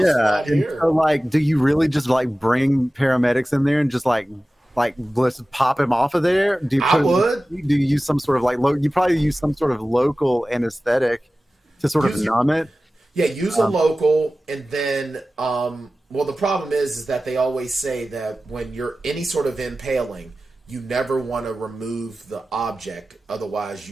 spot here. So do you really just bring paramedics in there and just let's pop him off of there? Do you use some sort of you probably use some sort of local anesthetic to sort of numb it? Yeah, use a local, and then, the problem is that they always say that when you're any sort of impaling, you never want to remove the object, otherwise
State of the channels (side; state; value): both; normal; correlation 0.96